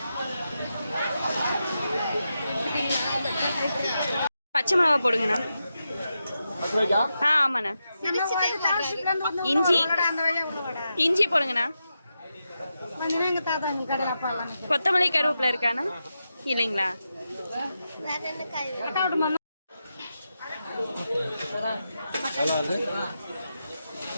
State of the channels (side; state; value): both; inverted; correlation -0.88